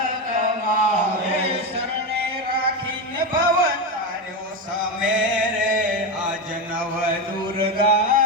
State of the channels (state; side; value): normal; both; correlation 0.13